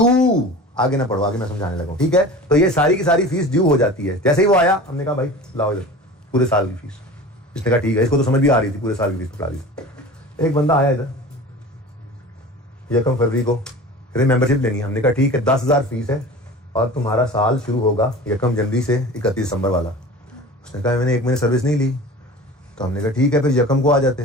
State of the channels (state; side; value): normal; both; correlation 0.37